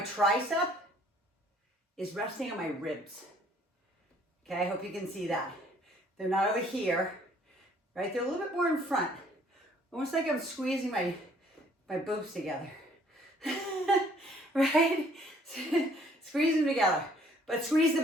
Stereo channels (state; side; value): normal; both; correlation 0.60